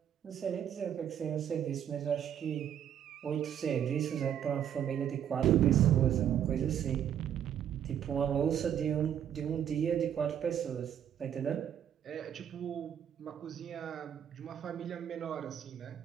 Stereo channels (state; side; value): quieter; left; 9.6 dB